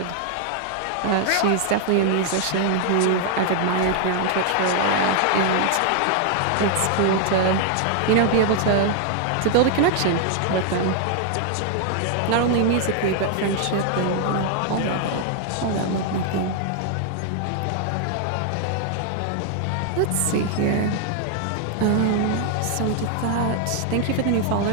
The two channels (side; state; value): both; different; correlation 0.00